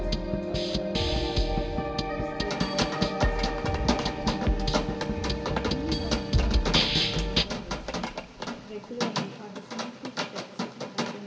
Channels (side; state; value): both; identical; correlation 1.00